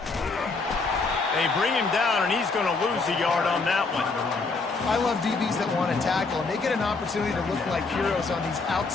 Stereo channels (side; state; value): right; quieter; 4.0 dB